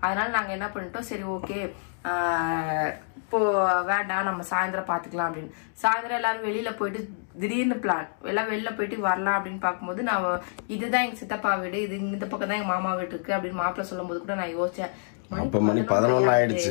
அதனால நாங்க என்ன பண்ணிட்டோம், சரி ஓகே இப்போ வேண்டாம் நம்ம சாயந்தரம் பாத்துக்கலாம் அப்படின்னு. சாயந்தரம் எல்லாரும் வெளியில போயிட்டு திடீர்னு பிளான் எல்லாம் வெளில போயிட்டு வரலாம் அப்படின்னு பார்க்கும்போது நான் இதுதான் எங்க சித்தப்பா வீடு, இது இந்த பக்கம் தான் எங்க மாமா வீடு இருக்கு அப்படின்னு மாப்பிள்ள சொல்லும் போது கூட நான் யோசிச்சேன், மணி 11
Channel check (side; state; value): right; silent; digital silence